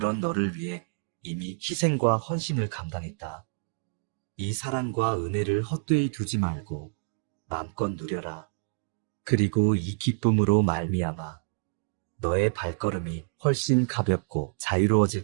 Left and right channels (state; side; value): silent; left; digital silence